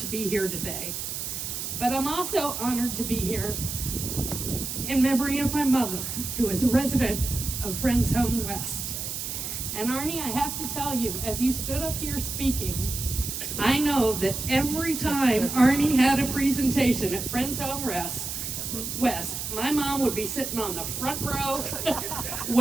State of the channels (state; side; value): noise; right; hiss, 5 dB below the sound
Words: be here today. But I'm also honored to be here in memory of my mother, who is a resident of Friends Home West. And Arnie, I have to tell you, as you stood up here speaking, I know that every time Arnie had a presentation at Friends Home West, my mom would be sitting on the front row